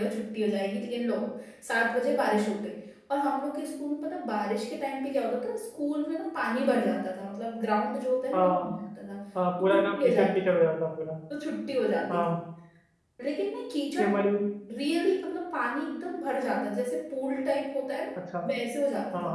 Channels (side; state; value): both; identical; correlation 1.00